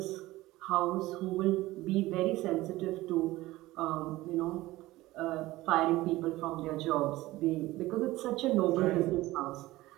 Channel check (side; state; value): left; quieter; 18.0 dB